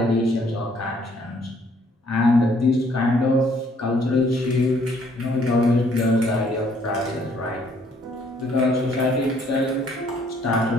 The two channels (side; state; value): both; normal; correlation 0.64